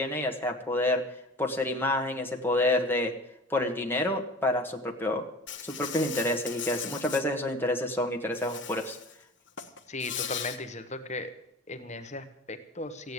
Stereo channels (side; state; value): both; normal; correlation 0.38